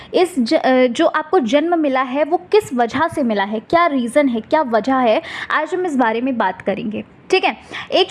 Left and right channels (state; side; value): identical; both; correlation 1.00